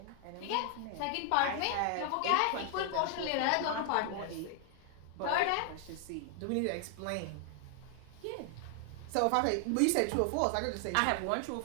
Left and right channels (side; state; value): both; different; correlation 0.00